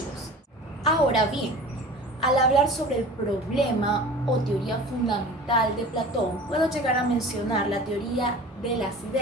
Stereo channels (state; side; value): normal; both; correlation 0.39